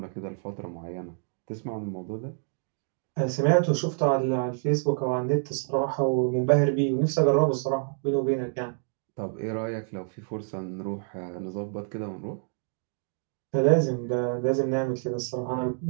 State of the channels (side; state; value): left; silent; 56 dB below the other